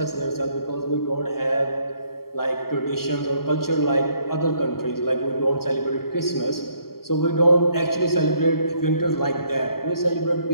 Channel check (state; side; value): late; right; 0.93 ms